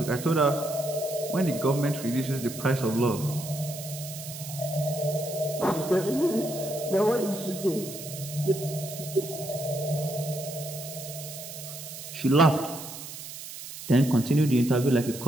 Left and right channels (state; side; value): noise; right; hiss, 11 dB below the sound